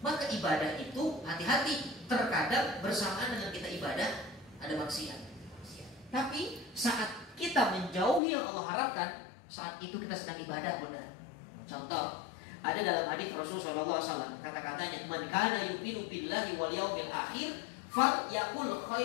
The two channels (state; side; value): drops out; right; at 8.2 s